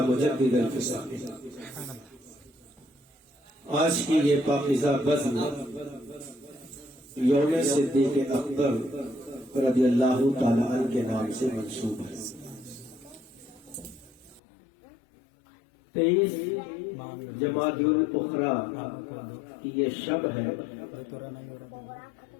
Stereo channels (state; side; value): drops out; right; at 14.4 s